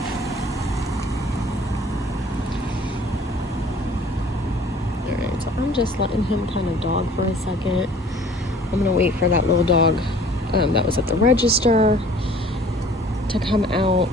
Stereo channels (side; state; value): both; normal; correlation 0.51